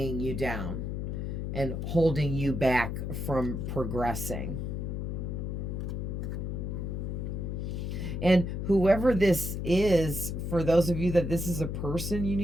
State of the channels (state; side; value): noise; left; hum, 3 dB below the sound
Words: you down. and holding you back from progressing. And whoever this is, for those of you that this is a person you